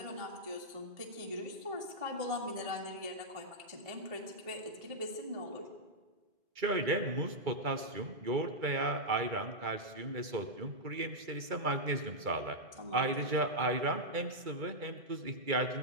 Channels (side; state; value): left; late; 2.3 ms